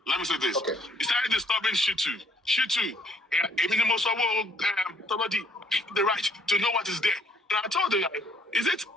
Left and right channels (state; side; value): normal; both; correlation 0.64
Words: Let me say this. Okay. He started disturbing Shitu. The right to know what is there. And I told him, is it